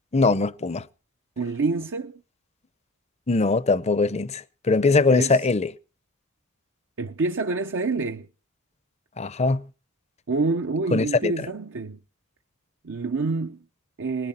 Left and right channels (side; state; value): both; normal; correlation 0.37